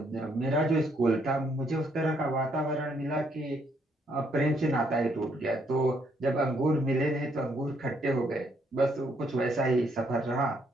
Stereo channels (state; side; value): normal; both; correlation 0.71